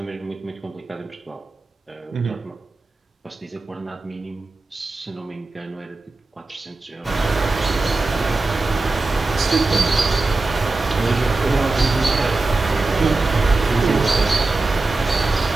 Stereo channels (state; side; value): quieter; left; 3.3 dB